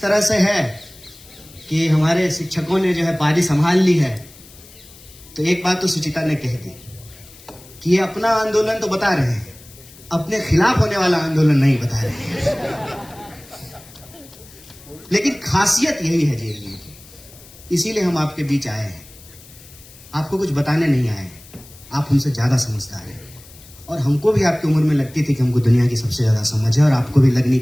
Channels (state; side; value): noise; left; hiss, 22 dB below the sound